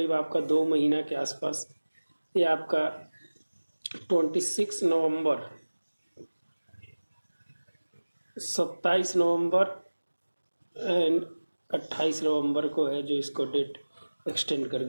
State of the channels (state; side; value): inverted; both; correlation -1.00